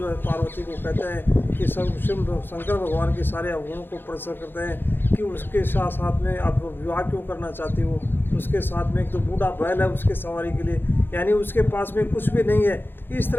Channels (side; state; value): right; late; 0.10 ms